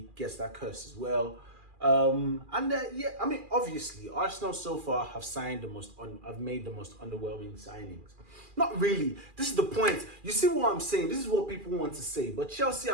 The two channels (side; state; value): left; late; 2.4 ms